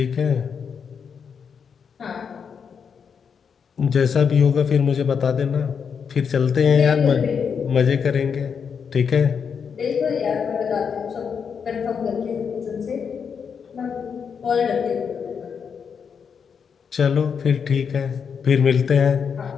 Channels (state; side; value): quieter; right; 6.6 dB